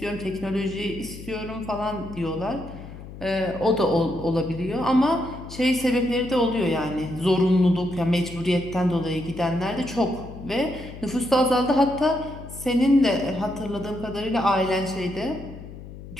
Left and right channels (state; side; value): noise; left; hum, 14 dB below the sound